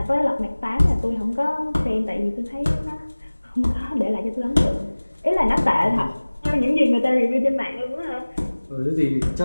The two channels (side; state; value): both; inverted; correlation -1.00